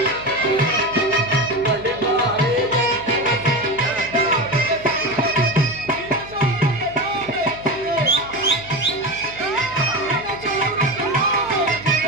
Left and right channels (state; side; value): noise; right; hum, 19 dB below the sound